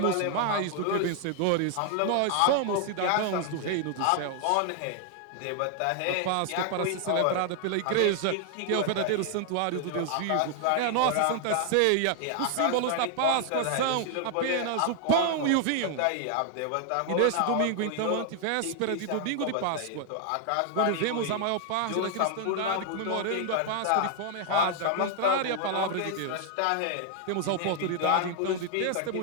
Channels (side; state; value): both; different; correlation 0.00